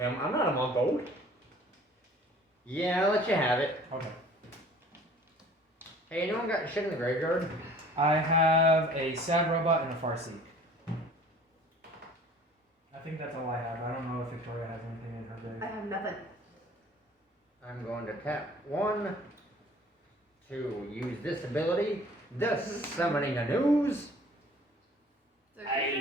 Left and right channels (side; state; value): both; normal; correlation 0.50